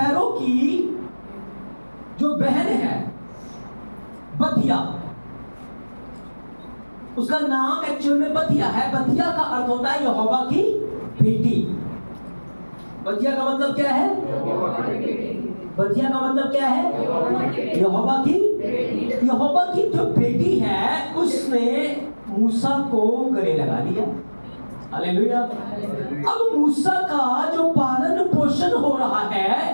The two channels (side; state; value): both; inverted; correlation -1.00